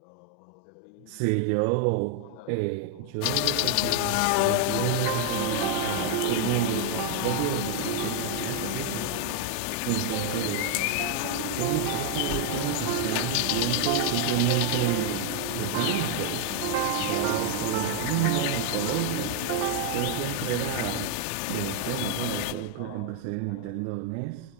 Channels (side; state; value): both; different; correlation 0.00